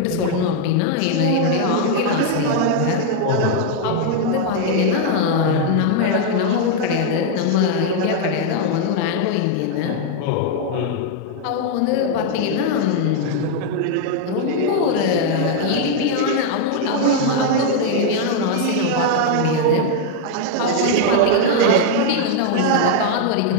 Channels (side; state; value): both; different; correlation 0.00